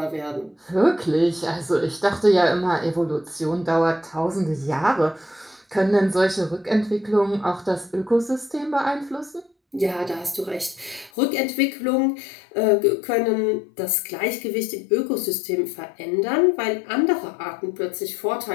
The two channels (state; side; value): drops out; right; at 11.1 s